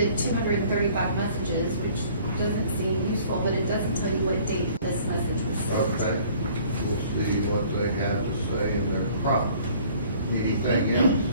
235 messages, which doesn't seem useful, but it doesn't tell you what date this message was sent. Okay. We'll see what they have to say in their prompt. Anything else?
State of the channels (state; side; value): inverted; both; correlation -0.54